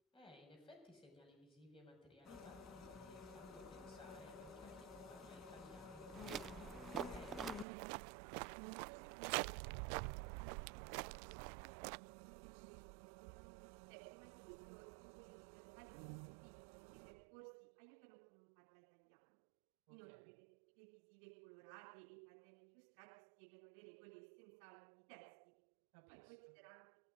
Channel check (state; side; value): drops out; left; at 7.7 s